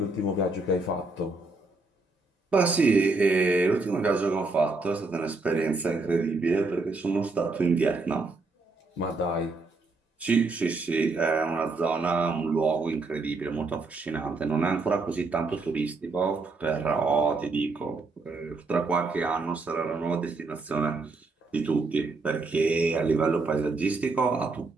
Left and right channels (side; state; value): left; quieter; 3.6 dB